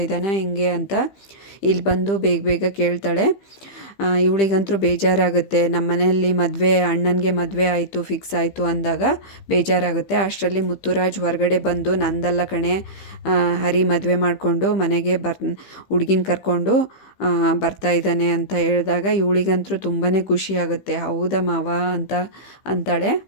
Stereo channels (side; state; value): right; late; 15 ms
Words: ಇದ್ದಾನ ಹೆಂಗೆ ಅಂತ ಇಲ್ಲಿ ಬಂದು ಬೇಗ ಬೇಗ ಕೇಳ್ತಾಳೆ. ಇವಳಿಗಂತೂ ಬೇಜಾರಾಗುತ್ತೆ. ನಮ್ಮ ಮನೆಯಲ್ಲಿ ಅಣ್ಣನಿಗೆ ಮದುವೆ ಆಯಿತು, ಫಿಕ್ಸ್ ಆಯಿತು ಅಂದಾಗ ಬೇಜಾರಾಗುತ್ತೆ. ಅಷ್ಟರಲ್ಲಿ ಮುತ್ತುರಾಜ್ ಹೊರಗಡೆ ಬಂದು ನಂದಲ್ಲ ಕಣೆ, ಹರಿ ಮದುವೆ ಮಾಡಿಕೊಂಡು ಮನೆಗೆ ಹುಡುಗಿನ ಕರ್ಕೊಂಡು ಬರ್ತಾ ಇದ್ದಾನೆ ಅಂತ ಹೇಳಿದಾಗ ಇವಳಿಗಂತೂ ತುಂಬಾ ಖುಷಿಯಾಗುತ್ತೆ. ಹೌದಾ ಮಾವ ಅಂತ ಅಂತಾಳೆ.